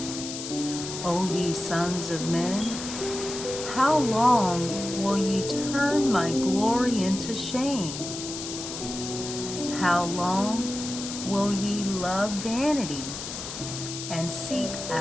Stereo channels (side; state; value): left; noise; hiss, 8 dB below the sound